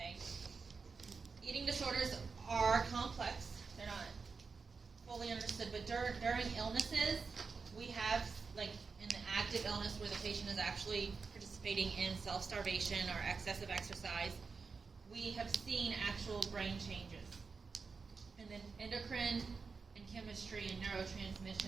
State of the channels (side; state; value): left; quieter; 4.9 dB